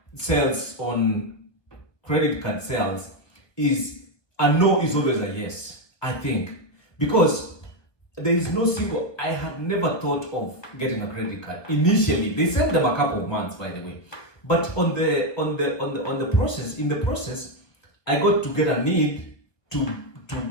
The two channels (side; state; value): right; late; 1.5 ms